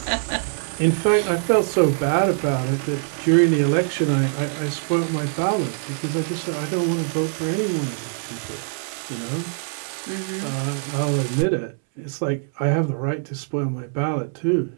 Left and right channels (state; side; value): silent; left; 63 dB below the other